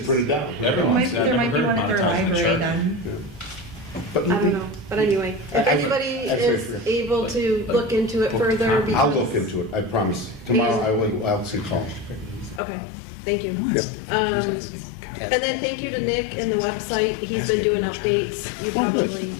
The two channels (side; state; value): right; drops out; at 12.6 s